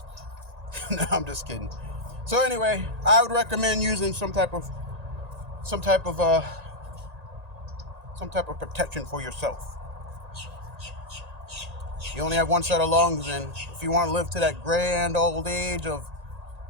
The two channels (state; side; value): late; left; 1.9 ms